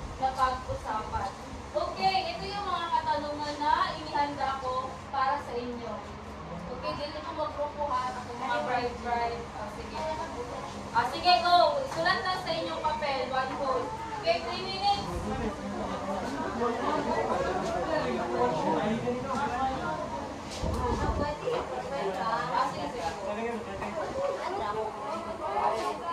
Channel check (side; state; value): both; identical; correlation 1.00